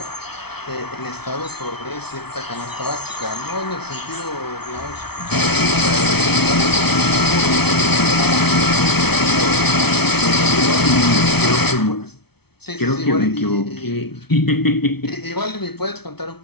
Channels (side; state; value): right; late; 0.98 ms